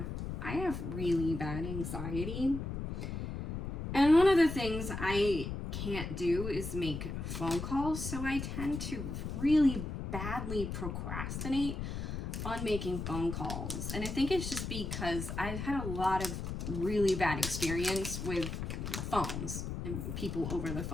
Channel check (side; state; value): left; noise; rumble, 5 dB below the sound